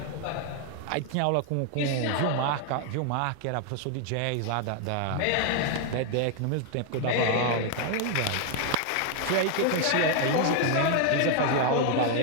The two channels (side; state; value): both; different; correlation 0.00